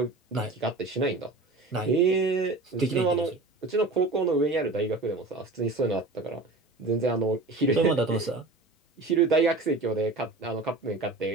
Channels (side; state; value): left; quieter; 3.2 dB